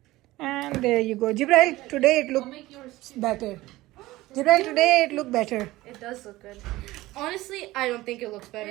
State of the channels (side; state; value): left; quieter; 18.1 dB